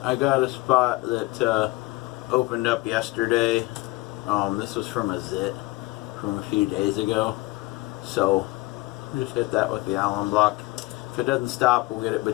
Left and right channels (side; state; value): right; quieter; 21.4 dB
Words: I got a spot that opened up yesterday. This was from a zit from a few days ago. So just hit that with the Allen block. If it doesn't stop, we'll get it